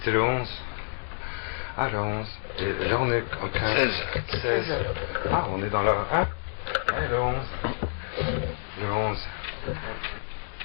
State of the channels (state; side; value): silent; right; digital silence